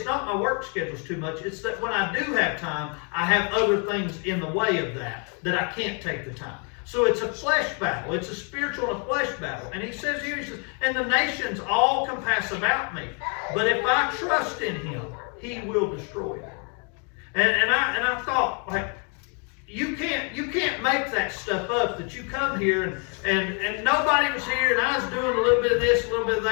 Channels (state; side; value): quieter; right; 37.9 dB